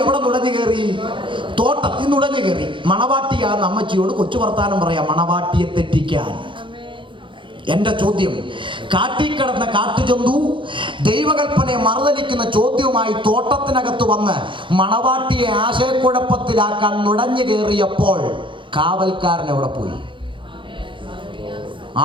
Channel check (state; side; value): late; left; 0.24 ms